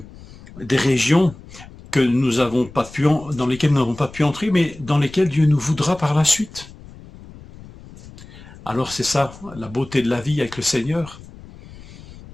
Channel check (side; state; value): left; noise; rumble, 19 dB below the sound